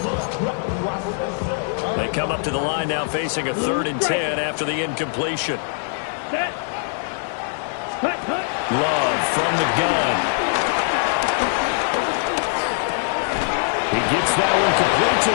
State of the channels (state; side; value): silent; right; digital silence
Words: They come up to the line now facing a 3rd and 10 after the incompletion. Love from the gun. He gets that one complete to